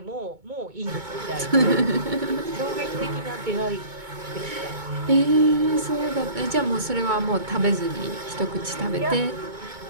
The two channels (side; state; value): left; late; 2.2 ms